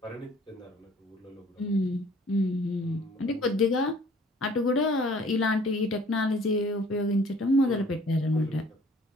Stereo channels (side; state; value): both; normal; correlation 0.55